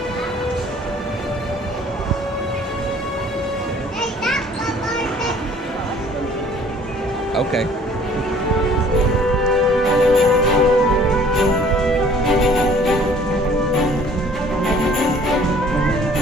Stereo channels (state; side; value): normal; both; correlation 0.54